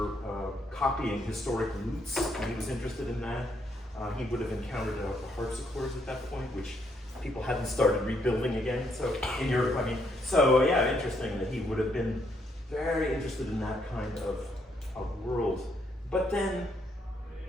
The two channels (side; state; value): both; normal; correlation 0.74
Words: copying historic roots, and he was interested in that. He would have encountered the harpsichords at that point, which people hadn't started rebuilding again. So in Europe, I mean, so yeah, interesting that he would have been very interested in that kind of world. But then,